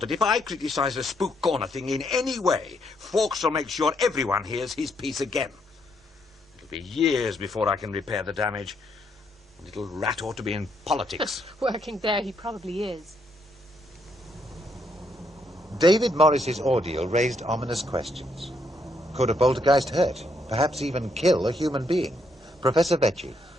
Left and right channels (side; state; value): both; normal; correlation 0.74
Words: if I criticize the Spook Corner thing in any way, Fawkes will make sure everyone hears his piece again. It'll be years before I can repair the damage. The little rat ought to be in politics. Working there, he probably is. David Morris's ordeal raised ominous questions. Could a poltergeist hurt, perhaps even kill a human being? Professor Vecchi.